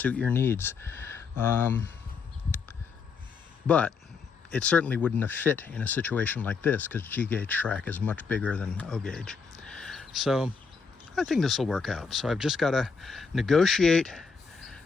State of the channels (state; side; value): quieter; right; 5.3 dB